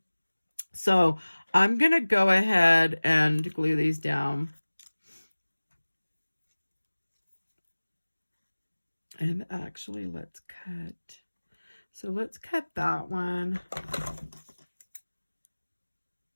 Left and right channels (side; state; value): both; inverted; correlation -1.00